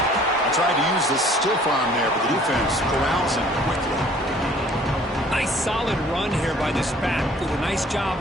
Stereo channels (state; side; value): normal; both; correlation 0.55